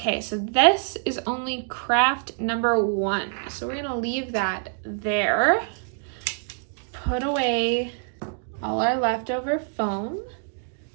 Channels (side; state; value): left; silent; digital silence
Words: so this is only craft number 1. So we're gonna leave that there. Put away all our leftover foam